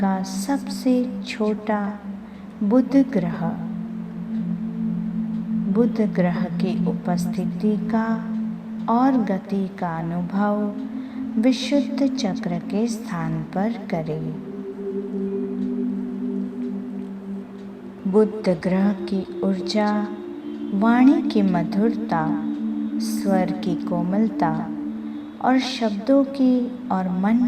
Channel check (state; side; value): identical; both; correlation 1.00